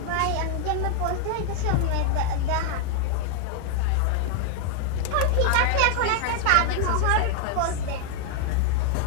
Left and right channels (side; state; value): both; different; correlation 0.00